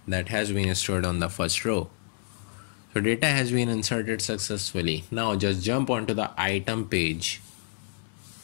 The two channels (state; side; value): silent; right; digital silence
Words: that has been stored on the first row. So data has been inserted successfully. Now just jump onto the item page.